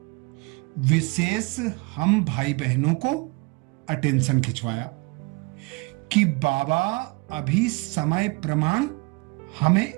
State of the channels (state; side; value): quieter; left; 27.5 dB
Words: विशेष हम भाई बहनों को अटेंशन खिंचवाया कि बाबा अभी समय प्रमाण हमें